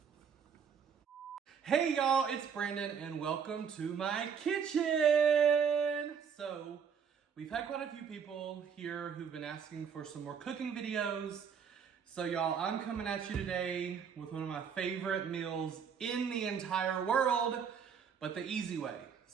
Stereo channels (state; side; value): quieter; left; 7.0 dB